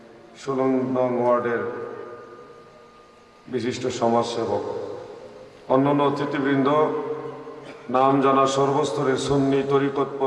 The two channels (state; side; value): identical; both; correlation 1.00